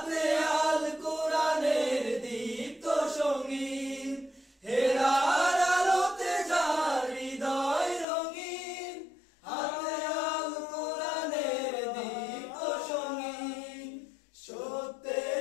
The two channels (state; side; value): drops out; right; at 8.1 s